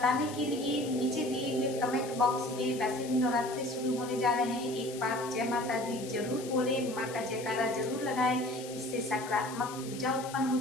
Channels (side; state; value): left; noise; hiss, 14 dB below the sound